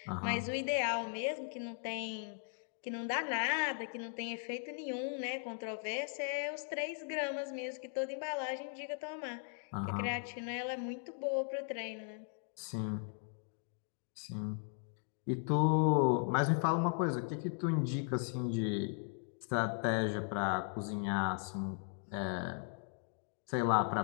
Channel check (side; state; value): right; silent; 53 dB below the other